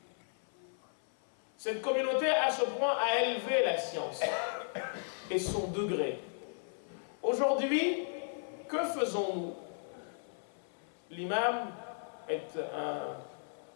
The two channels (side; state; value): right; silent; 54 dB below the other